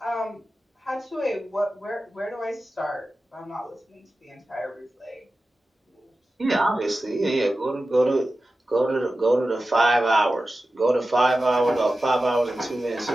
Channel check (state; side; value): normal; both; correlation 0.94